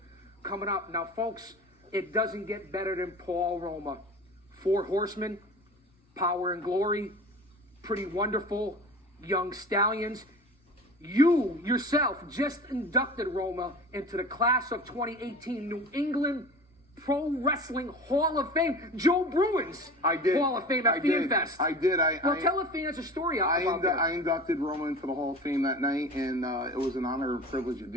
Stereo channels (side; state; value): both; normal; correlation 0.37